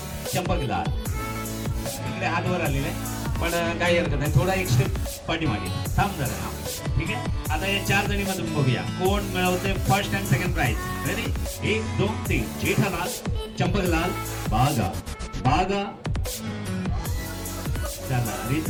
चंपकलाल. इकडे हात वर आलेले पण काही हरकत नाही, थोडा एक स्टेप पाठीमागे थांब जरा. हा, ठीक आहे. आता या 4 जणी मधून बघूया कोण मिळवते first and second prize. Ready, 1 2 3. Jethalal Champaklal Bagha, Bagha. चला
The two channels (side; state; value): both; identical; correlation 1.00